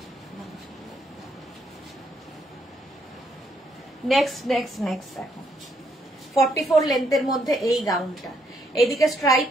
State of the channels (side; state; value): both; normal; correlation 0.72